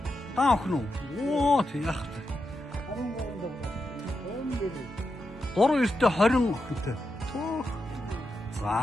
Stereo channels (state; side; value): normal; both; correlation 0.87